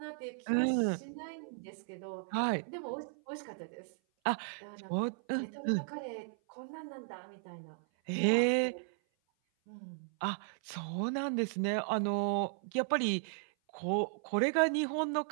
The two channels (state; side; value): silent; left; 54 dB below the other